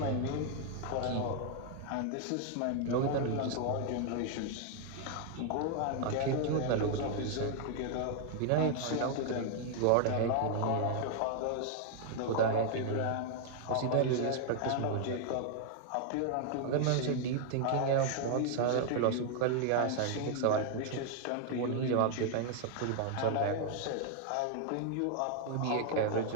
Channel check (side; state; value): both; different; correlation 0.00